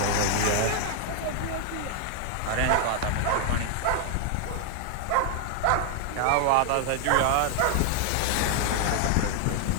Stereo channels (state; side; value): different; both; correlation 0.00